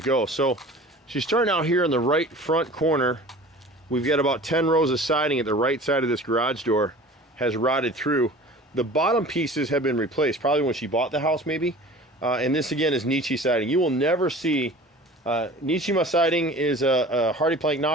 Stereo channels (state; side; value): normal; both; correlation 0.42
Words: go. So she's starting out here in the right front corner. We've got about 10 rows of siding at the right side of this garage door has rotted through. The bottom pieces have been replaced, probably when she bought the house maybe. And this again is Nietzsche siding. You will never see, Nietzsche siding is a Hardy Plank